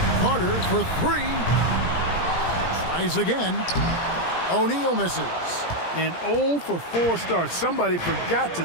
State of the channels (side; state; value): right; late; 17 ms